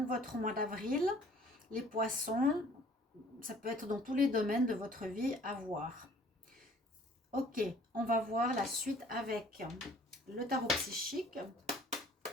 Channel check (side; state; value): both; normal; correlation 0.54